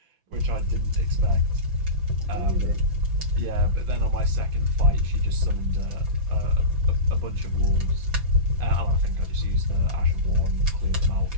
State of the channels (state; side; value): late; left; 6.0 ms